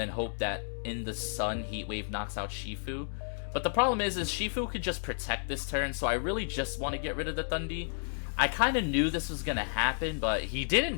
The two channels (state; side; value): silent; right; digital silence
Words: hope that in the sun, Heat Wave knocks out Shifu? But the problem is Shifu could just protect this turn, so I really just want to get rid of the Thundee. I kind of knew this was going to happen, but he